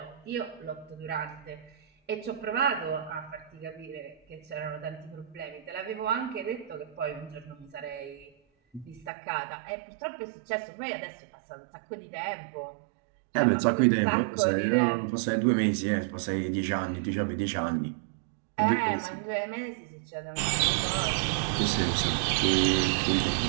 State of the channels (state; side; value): drops out; left; at 9.1 s